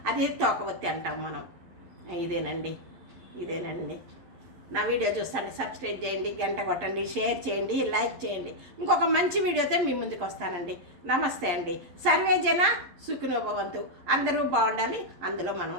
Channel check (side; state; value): left; late; 11 ms